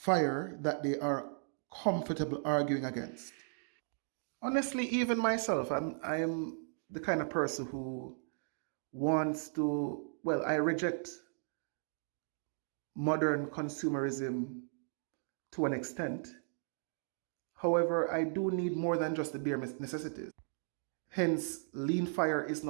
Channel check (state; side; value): silent; left; digital silence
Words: that they are comfortable arguing against. Honestly, even myself, I am the kind of person who wants to, well, I reject modern consumerism to an extent. However, I do need more than just the bare necessities. Hence, lean fire is